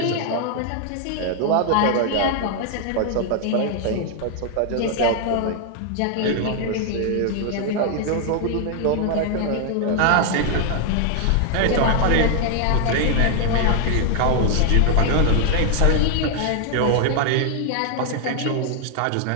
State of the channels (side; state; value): both; different; correlation 0.00